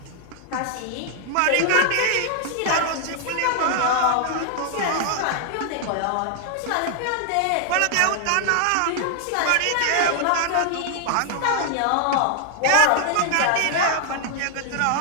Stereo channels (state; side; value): different; both; correlation 0.00